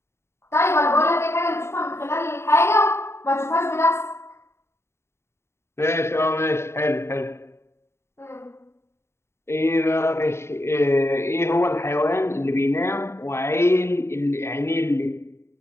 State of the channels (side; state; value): right; late; 0.13 ms